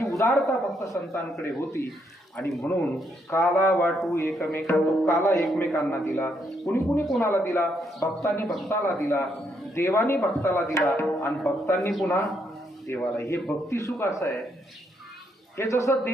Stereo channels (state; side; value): normal; both; correlation 0.75